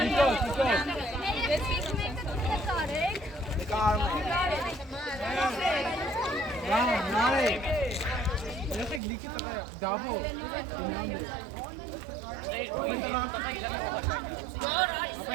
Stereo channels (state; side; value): drops out; left; at 9.0 s